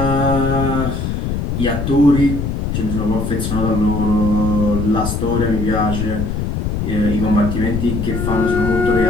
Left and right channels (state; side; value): noise; left; rumble, 2 dB below the sound